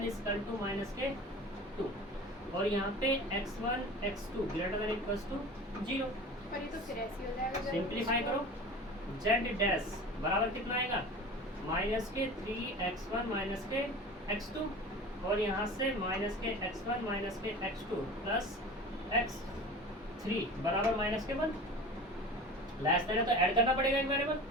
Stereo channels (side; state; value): both; normal; correlation 0.36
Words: equal to minus के 2, और यहाँ पे x1 x2 greater than equal to 0। पर ये तो फिर ऐसे हो जाएगा, सिंप्लीफाई करो, z डैश बराबर कितना आएगा, माइनस के 3x1 माइनस के x2, और यहाँ से माइनस के x1 माइनस के x2 प्लस x3 बराबर माइनस के 1। लेस देन है तो ऐड करना पड़ेगा एक वेरिएबल,